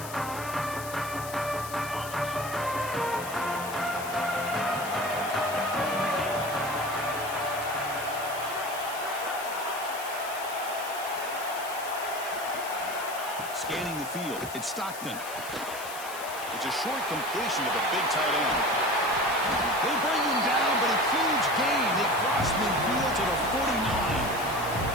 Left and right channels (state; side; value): noise; left; hiss, 12 dB below the sound